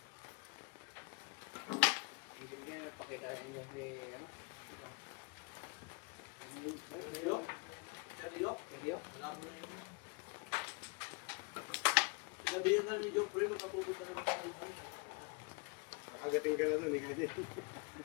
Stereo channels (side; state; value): right; quieter; 31.2 dB